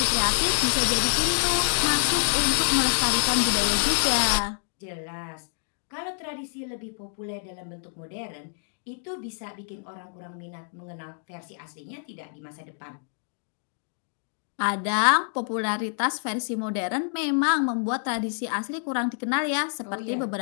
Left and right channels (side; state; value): right; silent; digital silence